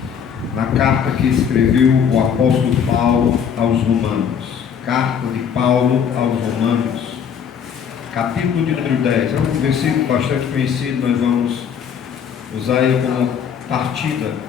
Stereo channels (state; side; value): quieter; right; 7.6 dB